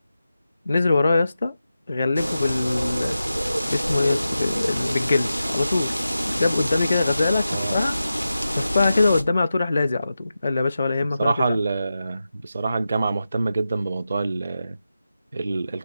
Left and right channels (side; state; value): both; inverted; correlation -0.92